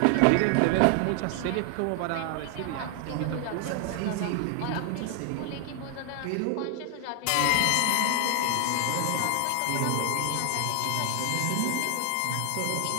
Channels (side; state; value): both; different; correlation 0.00